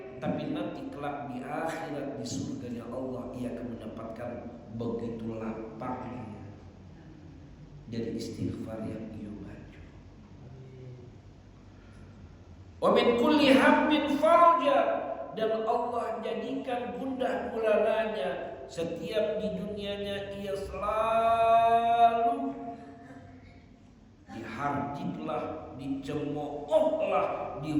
tapi nanti kelak di akhirat di surganya Allah ia akan mendapatkan begitu lapangnya dari istighfar yang ia baca. Wa min kulli hammin farja, dan Allah jadikan gundah gulananya. Setiap di dunianya ia selalu diharjitlah, dicemoohlah,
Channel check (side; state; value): both; identical; correlation 1.00